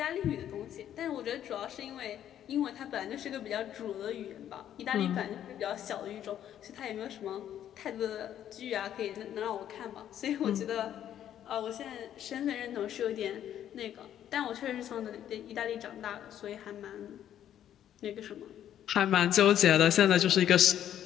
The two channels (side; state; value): right; quieter; 10.7 dB